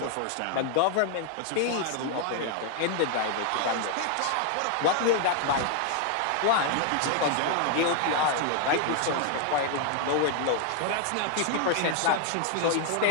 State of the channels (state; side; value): different; both; correlation 0.00